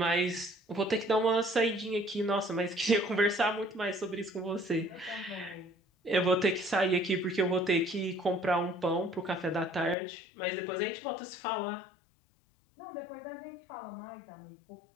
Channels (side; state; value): right; drops out; at 10.0 s